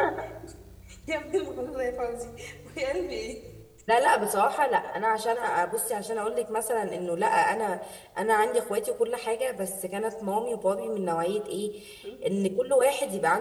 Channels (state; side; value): identical; both; correlation 1.00